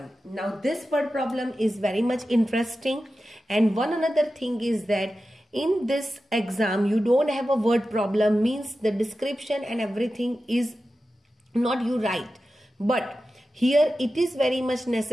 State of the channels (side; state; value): both; normal; correlation 0.93